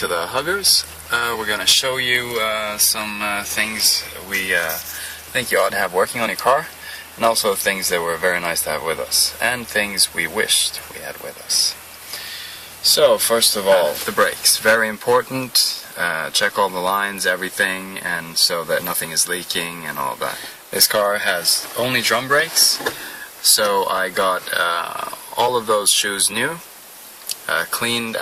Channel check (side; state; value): both; identical; correlation 1.00